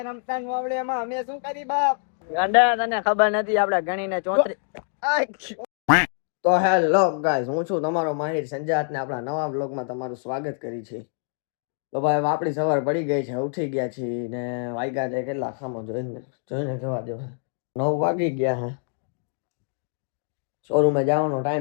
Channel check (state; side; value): silent; right; digital silence